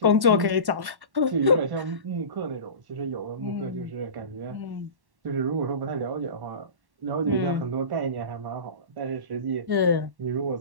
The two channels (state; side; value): late; left; 1.1 ms